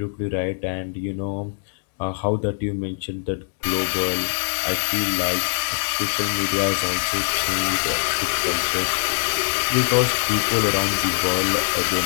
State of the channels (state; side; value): silent; right; 62 dB below the other